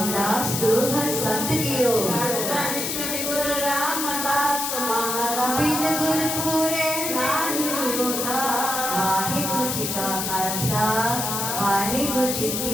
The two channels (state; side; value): noise; left; hiss, 2 dB below the sound